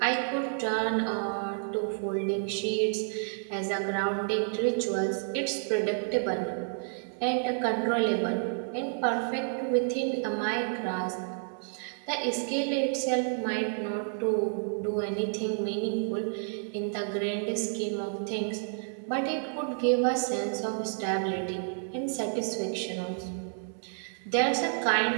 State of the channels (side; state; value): left; silent; digital silence